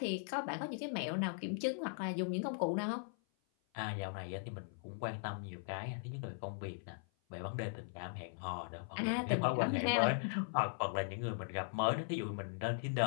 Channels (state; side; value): silent; right; 52 dB below the other